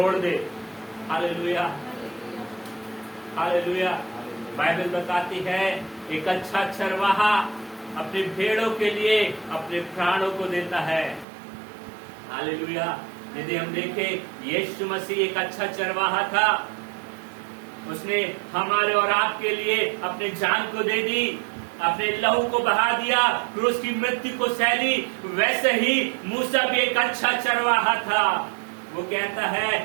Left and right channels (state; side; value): drops out; left; at 11.2 s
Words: दे। Hallelujah, hallelujah. बाइबल बताती है एक अच्छा चरवाहा अपने भेड़ों के लिए अपने प्राणों को देता है। हालेलुया। यदि हम देखें, यीशु मसीह एक अच्छा चरवाहा था, उसने हमारे और आपके लिए अपने जान को दे दी, अपने लहू को बहा दिया, फिर उसकी मृत्यु को सहली। वैसे ही मूसा भी एक अच्छा चरवाहा था। वो कहता है,